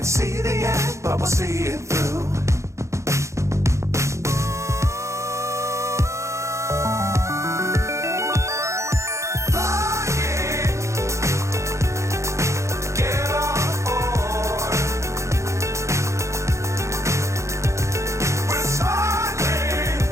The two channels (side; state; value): left; late; 0.14 ms